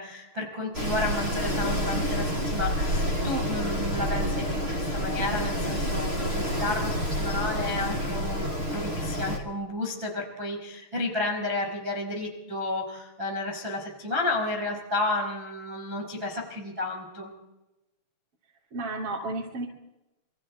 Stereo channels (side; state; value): left; late; 6.5 ms